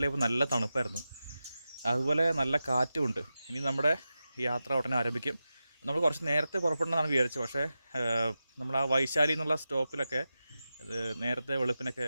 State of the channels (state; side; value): inverted; both; correlation -0.92